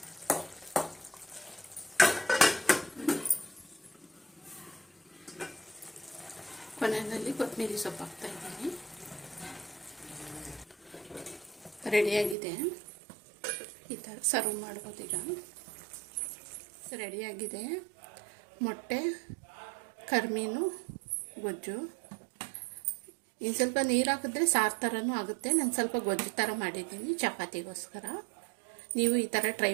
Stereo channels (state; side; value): drops out; left; at 12.4 s